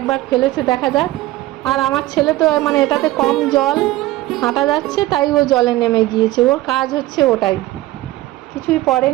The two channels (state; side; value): quieter; left; 17.1 dB